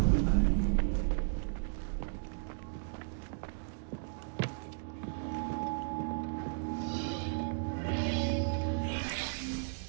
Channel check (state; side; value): silent; left; digital silence